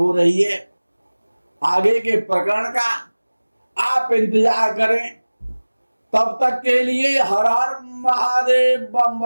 रही है। आगे के प्रकरण का आप इंतजार करें। तब तक के लिए हर हर महादेव, बम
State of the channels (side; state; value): both; inverted; correlation -1.00